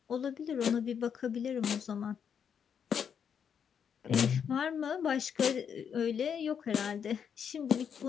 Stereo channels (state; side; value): quieter; right; 7.6 dB